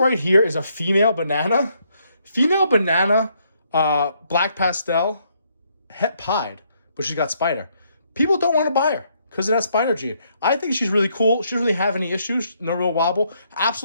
here is a female banana. Female banana, black pastel, het pied, but she's got spider. People don't want to buy her because of that spider gene. I think she's really cool. She doesn't really have any issues, no real wobble.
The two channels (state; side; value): inverted; both; correlation -0.72